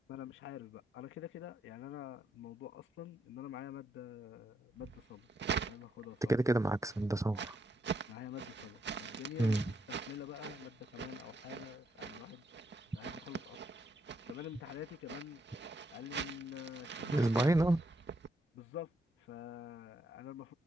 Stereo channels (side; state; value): both; normal; correlation 0.77